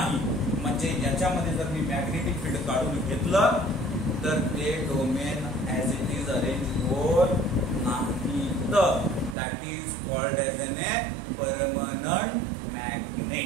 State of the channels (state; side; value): drops out; left; at 9.3 s